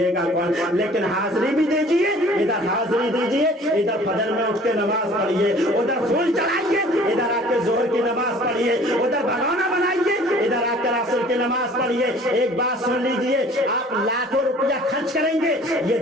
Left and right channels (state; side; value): normal; both; correlation 0.51